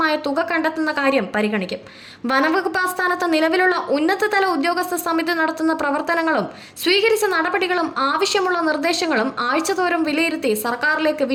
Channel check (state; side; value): identical; both; correlation 1.00